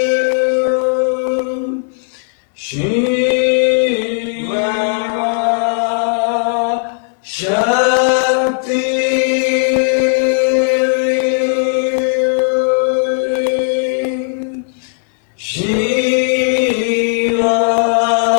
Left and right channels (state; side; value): silent; right; digital silence